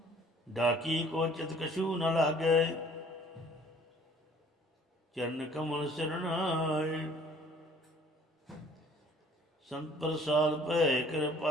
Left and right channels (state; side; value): normal; both; correlation 0.55